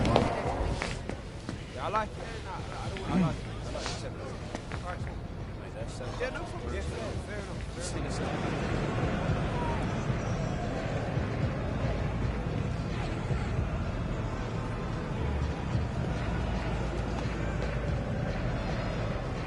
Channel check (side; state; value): both; identical; correlation 1.00